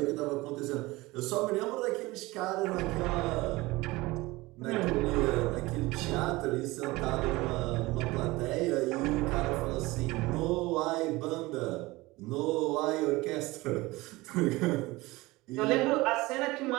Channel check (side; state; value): left; quieter; 21.0 dB